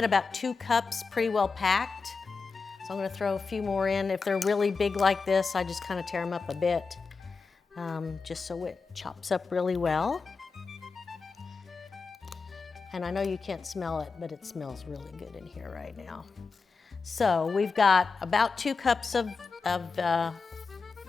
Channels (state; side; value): quieter; right; 4.7 dB